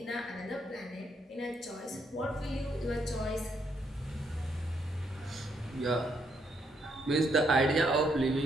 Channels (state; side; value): normal; both; correlation 0.74